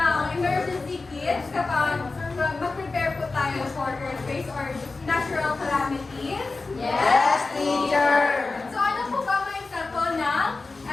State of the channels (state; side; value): quieter; right; 3.7 dB